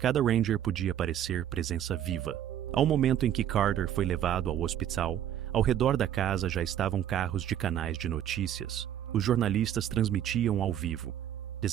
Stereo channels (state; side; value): quieter; left; 10.6 dB